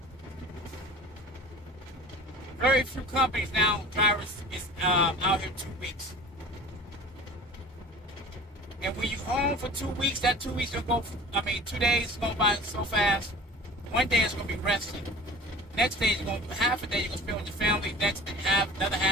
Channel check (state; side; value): normal; both; correlation 0.41